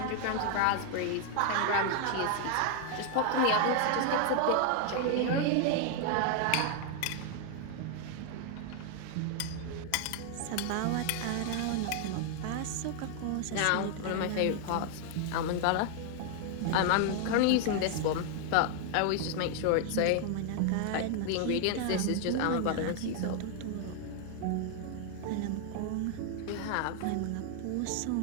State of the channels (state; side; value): different; both; correlation 0.00